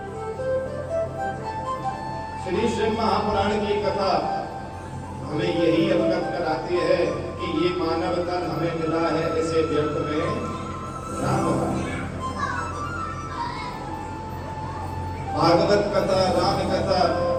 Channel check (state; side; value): identical; both; correlation 1.00